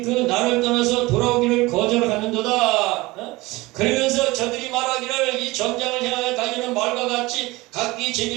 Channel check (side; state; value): left; quieter; 21.2 dB